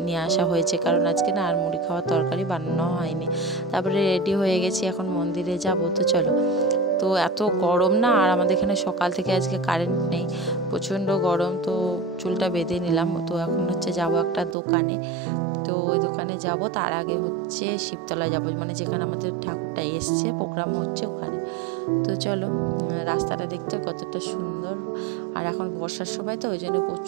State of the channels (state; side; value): drops out; left; at 14.6 s